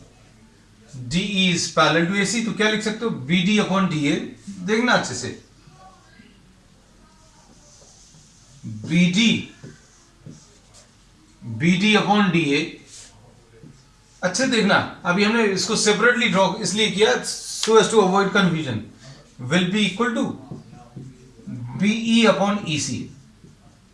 DE is parallel to AC, तो क्या लिख सकते हो? BD upon DA। देखना अच्छे से, BD अपॉन DA, अच्छे देखना। अभी हमने इसको सेपरेटली ड्रॉ इसलिए किया so as to avoid confusion. Will be equal to BE upon EC,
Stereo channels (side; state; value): both; identical; correlation 1.00